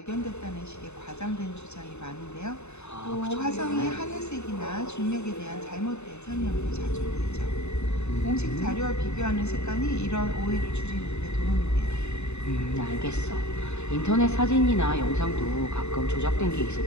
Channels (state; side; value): late; right; 0.82 ms